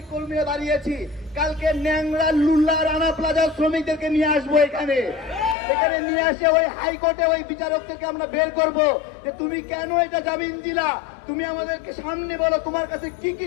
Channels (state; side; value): drops out; right; at 5.6 s